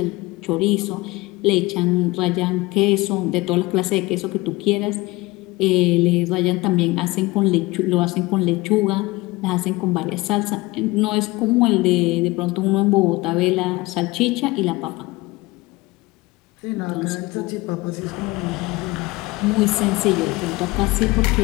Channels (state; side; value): quieter; right; 21.5 dB